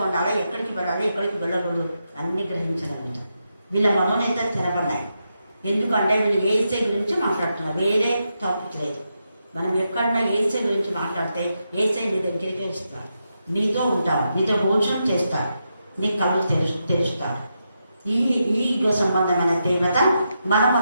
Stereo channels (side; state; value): both; inverted; correlation -0.85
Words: ఉండాలా, ఎక్కడికి వెళ్ళాలి, ఎక్కడికి వెళ్ళకూడదు అన్ని గ్రహించగలుగుతాం. వీళ్ళ మనోనేతం తెరబడ్డాయి. ఎందుకంటే వీళ్ళు ఏసై గురించి మాట్లాడుతున్నారు, వేరే టాపిక్ లేదు. మనం ఎక్కడున్నా ఏసై గురించి మాట్లాడితే ఏసై నీ దగ్గరికి ఇస్తాడు, నీతో ఉంటాడు, నీతో భోజనం చేస్తాడు, నీ కళ్ళు తెరుస్తాడు. ఈ సంబంధమైన తీవ్రత మన